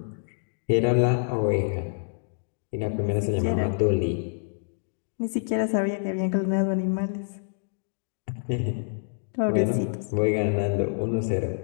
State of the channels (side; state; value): right; silent; digital silence